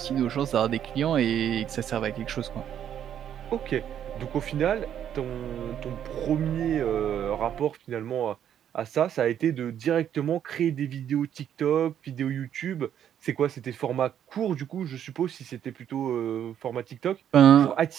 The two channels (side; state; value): left; quieter; 9.7 dB